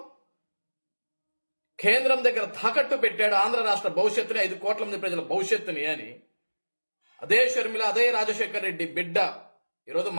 కేంద్రం దగ్గర తాకట్టు పెట్టాడు, ఆంధ్ర రాష్ట్ర భవిష్యత్తుని 5 కోట్ల మంది ప్రజల భవిష్యత్తుని అని అదే షర్మిల అదే రాజశేఖర్ రెడ్డి బిడ్డ ఈరోజు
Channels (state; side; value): inverted; both; correlation -1.00